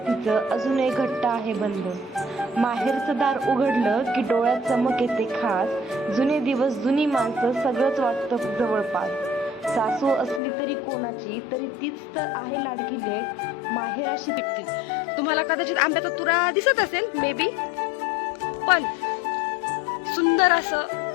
तिचं अजूनही घट्ट आहे बंध. माहेरचं दार उघडलं की डोळ्यात चमक येते खास. जुने दिवस, जुनी माणसं, सगळंच वाटतं जवळपास. सासू असली तरी कोणाची, तरी तीच तर आहे लाडकी लेक. माहेराशी तुम्हाला कदाचित आंब्याचा तुरा दिसत असेल मे बी, पण सुंदर असं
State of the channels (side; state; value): right; drops out; at 10.4 s